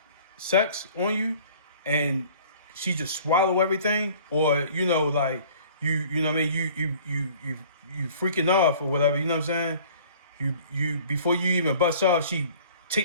sex on you, and she just swallow everything, or you know, like you know what I mean, you freaking off or whatever. You know what I'm saying? You before you even bust off, she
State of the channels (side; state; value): both; inverted; correlation -0.50